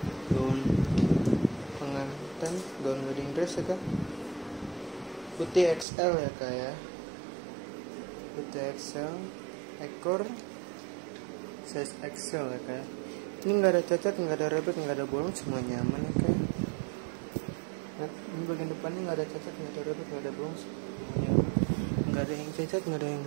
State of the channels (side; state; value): left; drops out; at 5.9 s